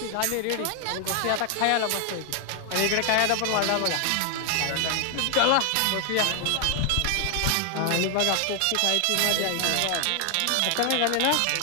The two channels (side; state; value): both; different; correlation 0.00